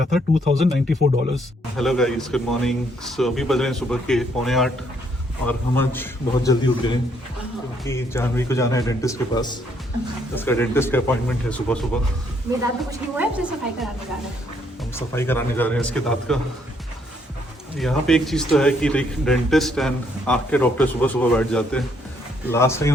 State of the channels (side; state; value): both; normal; correlation 0.70